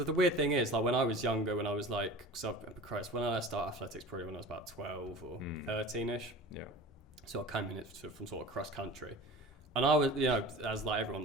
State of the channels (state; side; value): normal; both; correlation 0.37